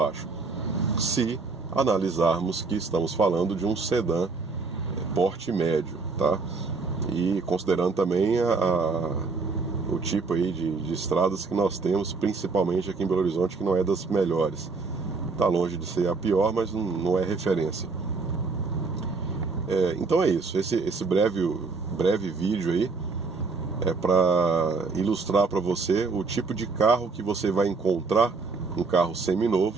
se analisarmos que estamos falando de um sedã porte médio, tá? E considerando também o tipo aí de estradas que nós temos, principalmente aqui em Belo Horizonte, que não é das melhores. Está longe de ser a pior, mas não é referência. Então é isso, esse breve vídeo aí é para ilustrar para você o tipo de carro que você vai encontrar, um carro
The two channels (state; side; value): quieter; left; 4.3 dB